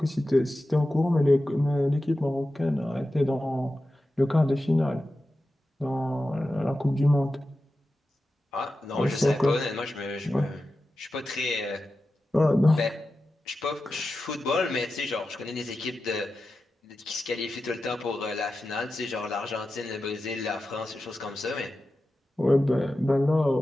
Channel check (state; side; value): normal; both; correlation 0.92